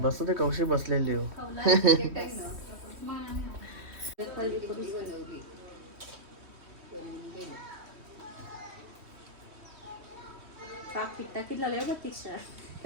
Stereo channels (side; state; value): left; late; 3.1 ms